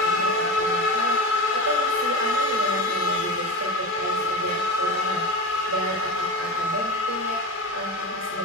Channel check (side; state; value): both; normal; correlation 0.23